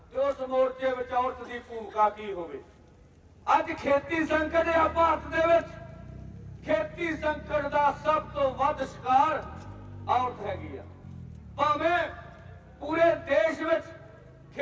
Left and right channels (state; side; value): identical; both; correlation 1.00